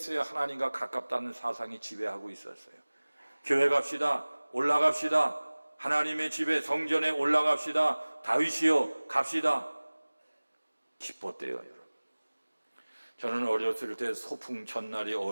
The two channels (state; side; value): inverted; both; correlation -1.00